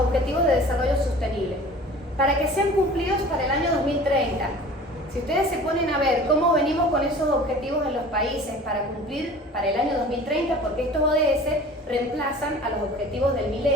de Desarrollo Sostenible para que sean cumplidos para el año 2030. Si ustedes se ponen a ver cómo venimos con esos objetivos en los países para cumplir para el año 2030, porque estos ODS reemplazan a los objetivos del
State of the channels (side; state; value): both; normal; correlation 0.43